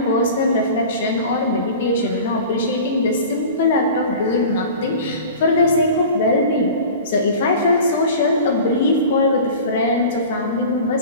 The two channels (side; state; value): both; inverted; correlation -0.38